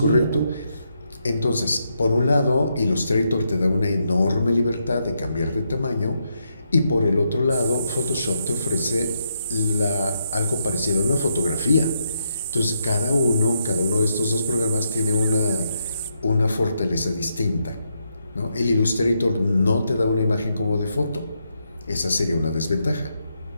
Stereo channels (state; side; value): inverted; both; correlation -0.81